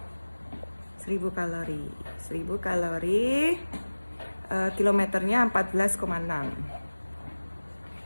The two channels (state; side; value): inverted; both; correlation -1.00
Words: 1000 kalori. 1000 kalori, kilometernya 14,6.